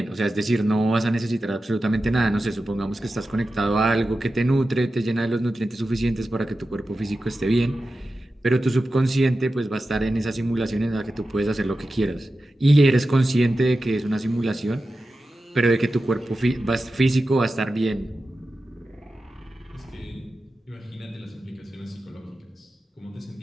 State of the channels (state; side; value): normal; both; correlation 0.93